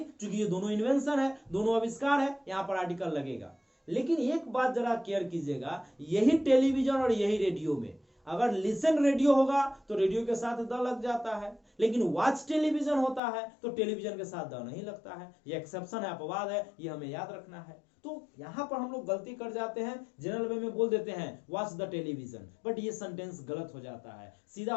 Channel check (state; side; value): drops out; right; at 13.2 s